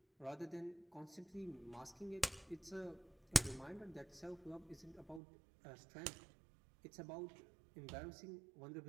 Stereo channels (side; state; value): left; drops out; at 5.2 s